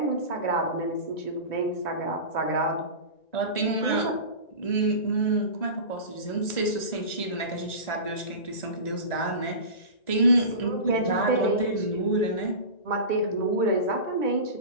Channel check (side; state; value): right; late; 1.9 ms